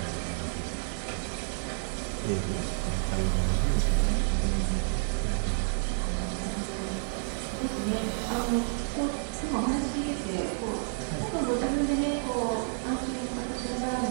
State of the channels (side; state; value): left; silent; digital silence